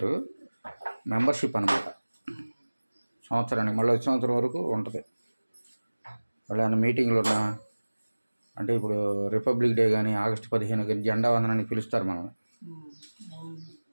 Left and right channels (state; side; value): inverted; both; correlation -1.00